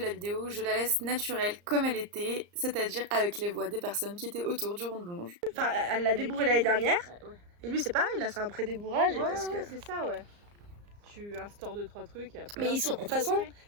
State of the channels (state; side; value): late; left; 34 ms